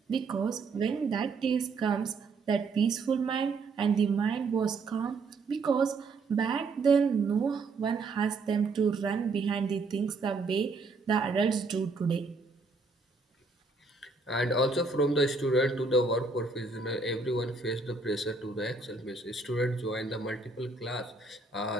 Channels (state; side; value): quieter; left; 4.0 dB